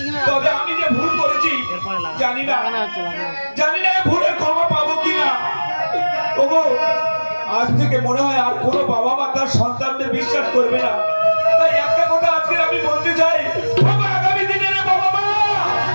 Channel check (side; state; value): both; inverted; correlation -1.00